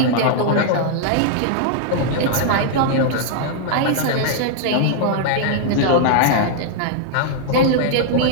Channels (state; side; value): different; both; correlation -0.01